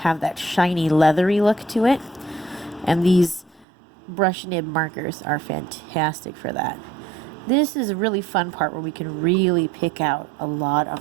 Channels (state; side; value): drops out; left; at 3.7 s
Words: that shiny, leathery look to it. And these brush nib markers are fantastic for that. This is a really fun part where we can really pick out a lot